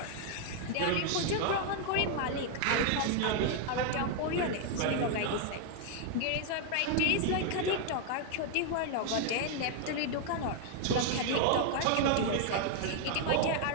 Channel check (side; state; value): both; different; correlation 0.00